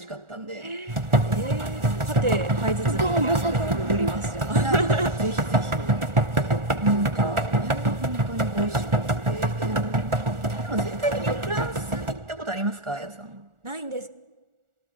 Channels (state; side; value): late; left; 1.4 ms